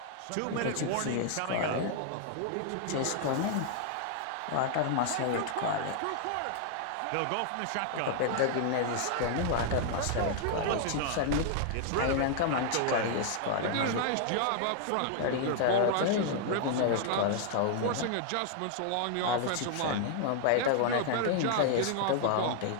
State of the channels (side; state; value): both; different; correlation 0.00